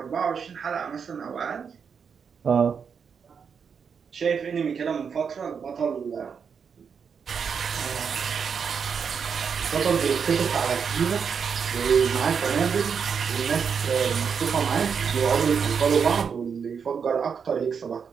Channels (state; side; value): quieter; left; 6.5 dB